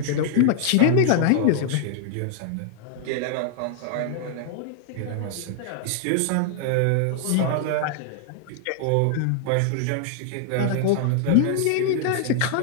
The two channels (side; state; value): both; different; correlation -0.01